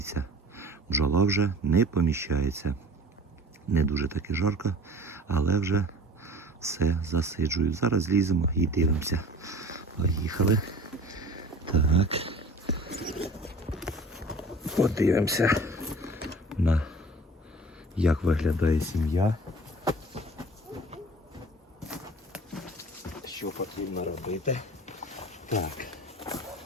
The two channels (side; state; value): both; normal; correlation 0.44